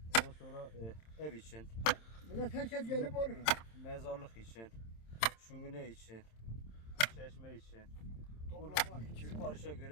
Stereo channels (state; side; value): late; right; 27 ms